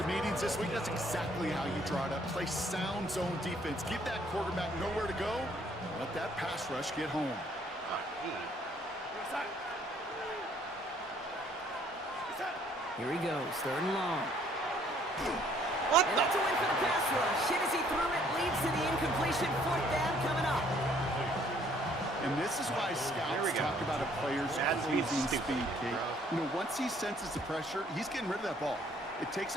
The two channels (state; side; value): normal; both; correlation 0.63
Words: meetings this week, that's exactly how you draw it up. Play sound zone defense. Give that quarterback nowhere to go. Let that pass rush get home. Here he goes, 3rd and long. What And the? that's a win for the pass rush. Hit as he threw it, leads to the incompletion. 4th down coming up. And this is why scouts talk about a player's closing speed, Kate. You know, once he senses the pressure, he's getting rid of that ball. It takes